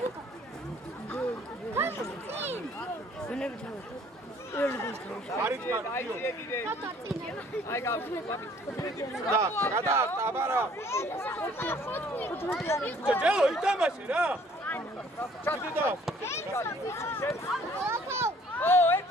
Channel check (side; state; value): both; normal; correlation 0.58